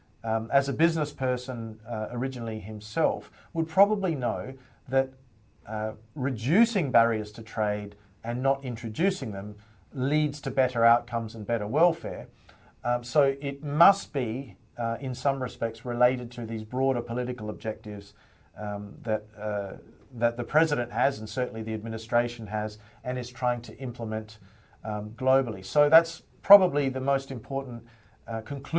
as a business person originally himself, would probably know that reducing barriers to trade and not introducing them leads to better outcomes and better welfare. So it must be, in some respects, related to these broader political objectives that the president has, and certainly the administration has, and is trying to implement globally. So that's probably the most important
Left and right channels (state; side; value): identical; both; correlation 1.00